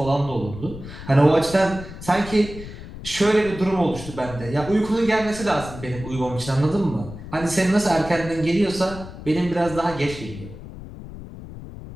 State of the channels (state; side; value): noise; left; rumble, 13 dB below the sound